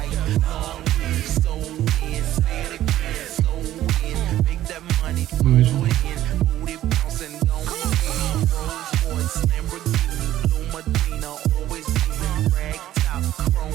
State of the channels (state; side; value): quieter; left; 13.3 dB